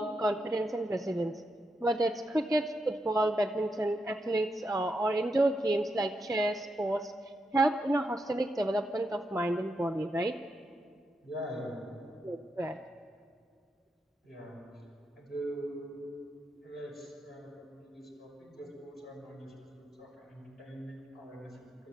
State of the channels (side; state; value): both; normal; correlation 0.84